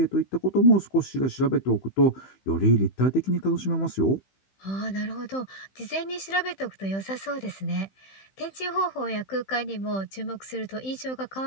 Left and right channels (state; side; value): late; right; 15 ms